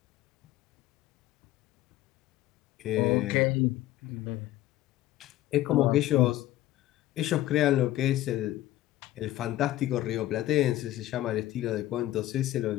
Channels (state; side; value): quieter; right; 15.0 dB